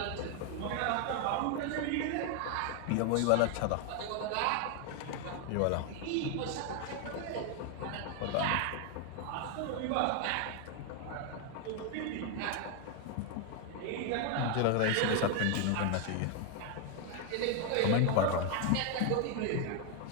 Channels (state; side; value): different; both; correlation 0.01